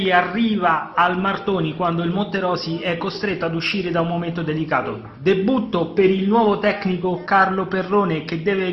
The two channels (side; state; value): both; identical; correlation 1.00